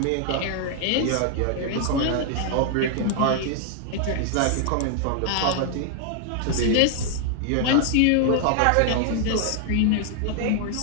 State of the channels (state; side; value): different; both; correlation 0.00